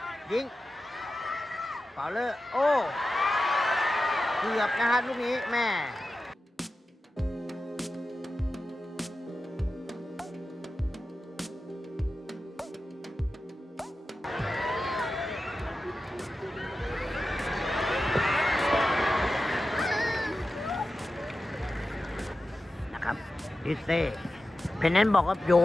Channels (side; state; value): both; normal; correlation 0.93